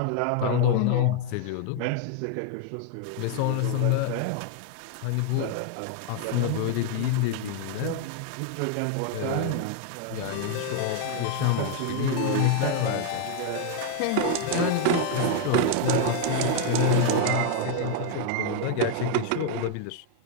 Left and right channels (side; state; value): both; different; correlation 0.00